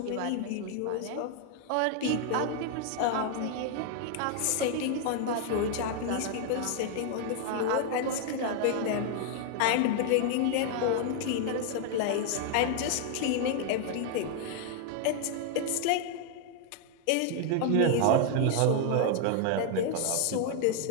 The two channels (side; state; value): both; different; correlation 0.00